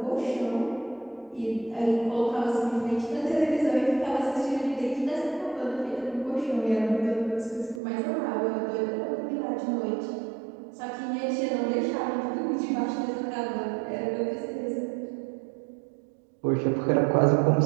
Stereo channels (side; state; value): left; drops out; at 7.8 s